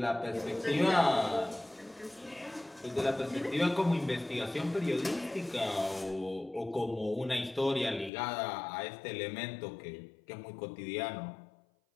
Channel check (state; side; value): drops out; right; at 8.1 s